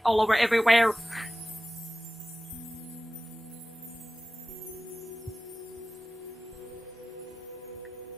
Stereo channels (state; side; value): normal; both; correlation 0.96